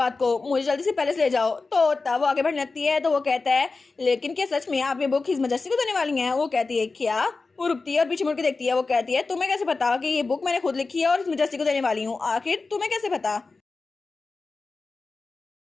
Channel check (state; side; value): quieter; right; 3.9 dB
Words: को, मुझे जल्दी से पैलेस ले जाओ। तो तब वो आगे बढ़ने लगती है तो वो कहता है लेकिन क्या सच में आप ये बुक हिज मैजेस्टी को देने वाली हैं। वो कहती है क्या, वो रुकती है और पीछे मुड़ के देखती है। वो कहती है तुम्हें कैसे पता कि ये बुक मैंने खुद लिखी है और हिज मैजेस्टी को देने वाली हूँ, आखिर तुम्हें कैसे पता।